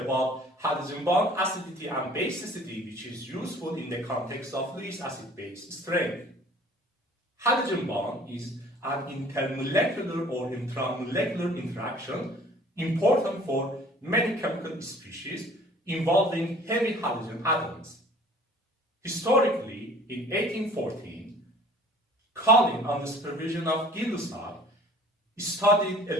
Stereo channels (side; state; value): both; normal; correlation 0.50